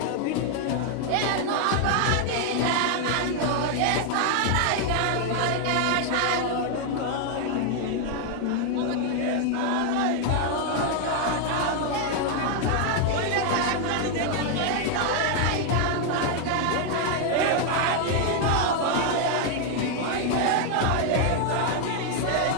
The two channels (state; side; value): different; both; correlation 0.00